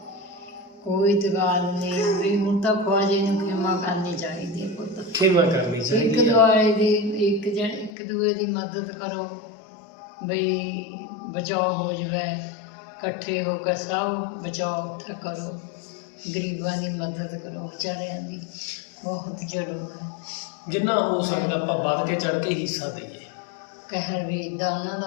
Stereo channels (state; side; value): drops out; right; at 8.0 s